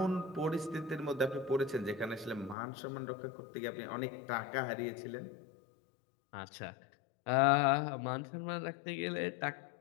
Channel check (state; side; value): drops out; right; at 2.6 s